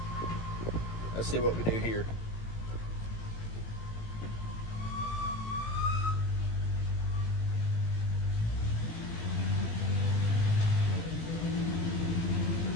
Let's see what we do here.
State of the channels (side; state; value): right; late; 18 ms